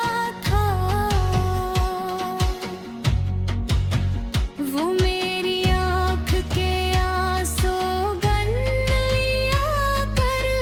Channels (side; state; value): both; identical; correlation 1.00